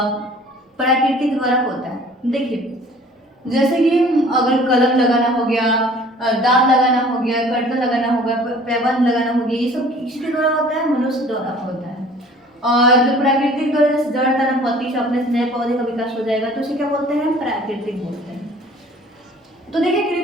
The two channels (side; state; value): both; normal; correlation 0.50